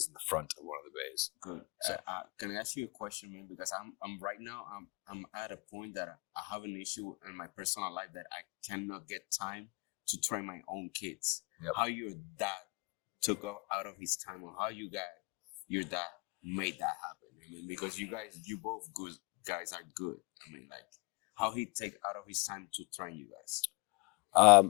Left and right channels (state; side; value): quieter; right; 28.2 dB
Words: in the front of one of the bays. Good. So can I ask you a question, man? Because I'm right now I'm at a point that I have an issue in my personal life that I cannot get time to train my own kids. Yep. How your dad took out of his time, or how your dad made that happen? I mean, because you both good guys are good. I mean, like how he take out of his time to train you guys.